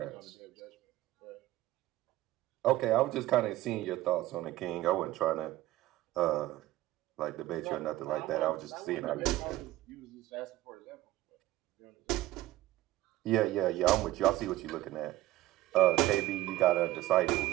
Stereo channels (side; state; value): left; quieter; 16.0 dB